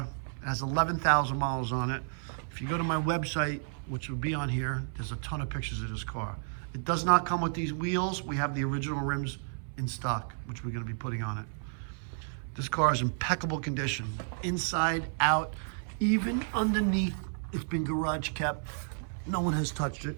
It has 11,000 miles on it. If you go to my website, which will be on here, there's a ton of pictures of this car. It does not come with these wheels. We have the original rims in stock, which we're gonna be putting on it. This car is in impeccable condition, inside, out, even underneath. It's been garage kept. No one has touched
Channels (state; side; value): silent; left; 57 dB below the other